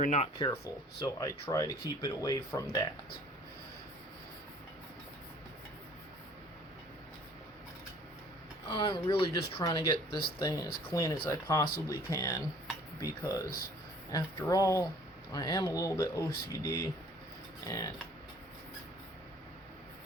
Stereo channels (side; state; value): both; normal; correlation 0.53